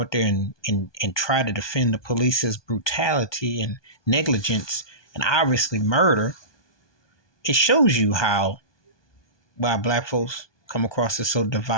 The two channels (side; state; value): right; late; 1.2 ms